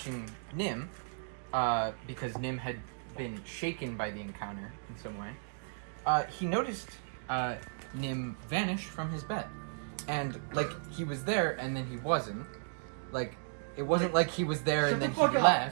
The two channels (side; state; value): left; silent; digital silence